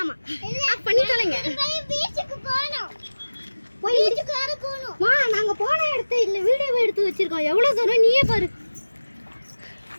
பண்ணி தொலைங்க. பீச்சுக்கு போறோம். பீச்சுக்கு வேற போறோம். வா நாங்க போன இடத்தை இல்ல வீடியோ எடுத்து வச்சிருக்கோம். எவ்வளவு தூரம் நீயே பாரு.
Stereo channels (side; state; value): both; inverted; correlation -1.00